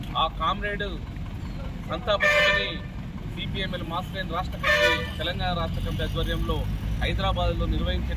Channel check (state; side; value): identical; both; correlation 1.00